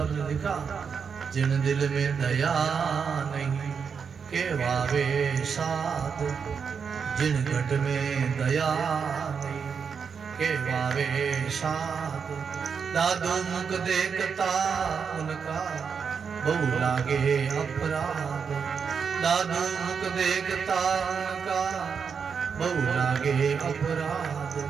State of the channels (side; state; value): left; quieter; 6.3 dB